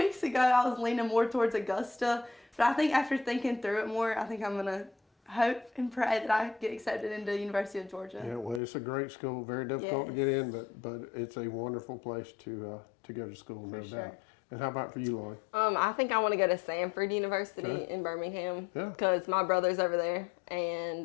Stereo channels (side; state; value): right; drops out; at 8.6 s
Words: ago, I was leaning more towards Augusta. But I think after thinking through it more, I think I'm going to hope and pray that I get accepted into University of Georgia. Yeah, well, it's a great school. Very difficult to get in, but it's a wonderful place to go to school, no doubt. And how about for you, Lauren? I think I want to go to Sanford University in Birmingham Yeah. because my brother's over there